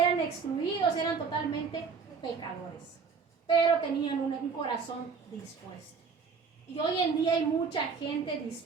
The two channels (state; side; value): quieter; left; 5.4 dB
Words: excluidos, eran totalmente pecadores, pero tenían un corazón dispuesto. Y hoy en día hay mucha gente